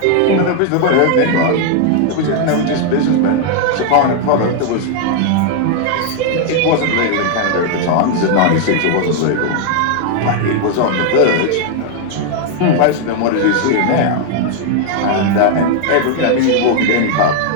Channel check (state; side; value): different; both; correlation 0.00